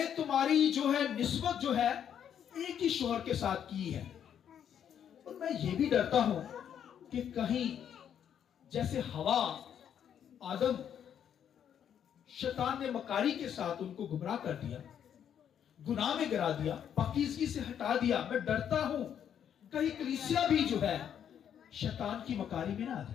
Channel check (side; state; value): right; quieter; 9.0 dB